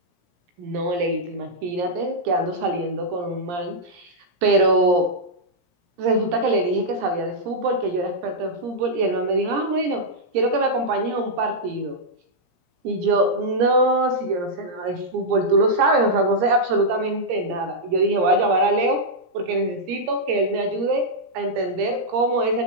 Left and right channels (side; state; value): left; late; 17 ms